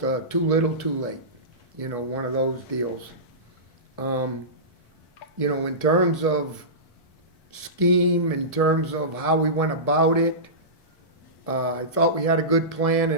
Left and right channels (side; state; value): right; late; 4.5 ms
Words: too little, too late. You know, one of those deals. You know, in terms of scheme, in terms of how we went about it, I thought we had a good plan